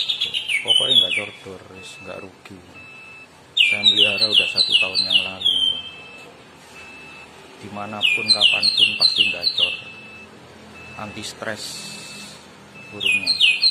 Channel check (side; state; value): both; identical; correlation 1.00